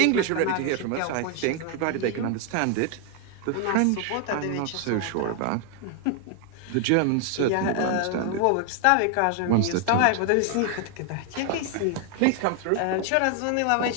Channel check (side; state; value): both; different; correlation 0.00